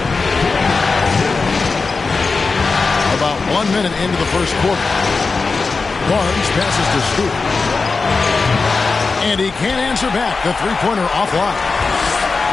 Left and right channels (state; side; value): quieter; right; 4.3 dB